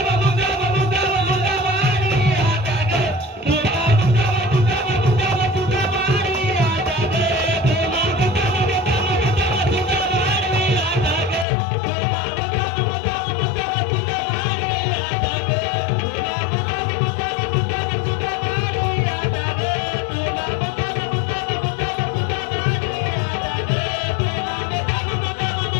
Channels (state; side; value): drops out; right; at 11.5 s